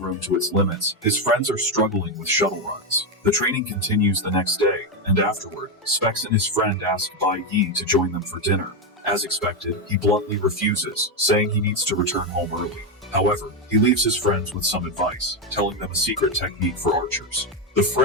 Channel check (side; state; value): both; normal; correlation 0.08